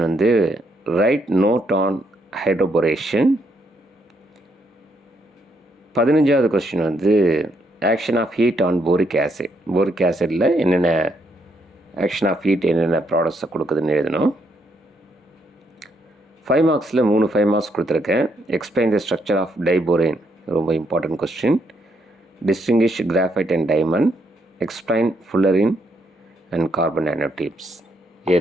வந்து write note on hydroboration. 15வது கொஸ்டின் வந்து action of heat on boric acid. boric acidல என்னென்ன action of heat என்னென்ன ப்ராடக்ட்ஸை கொடுக்குதுன்னு எழுதணும். 5 மார்க்ஸில் 5 மார்க்ஸ் கொடுத்துருக்கேன். Explain the structure of diborane, ரொம்ப important question. Distinguish graphite and diamond. Explain fullerene and carbon nanotubes. இதை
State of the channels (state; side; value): normal; both; correlation 0.75